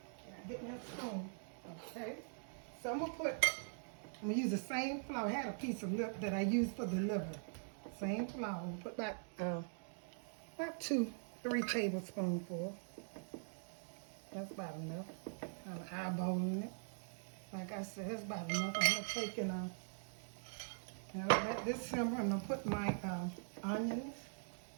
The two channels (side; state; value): left; silent; digital silence